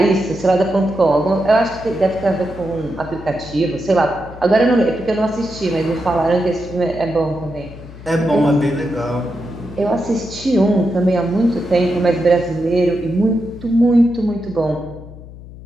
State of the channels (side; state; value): left; noise; hum, 16 dB below the sound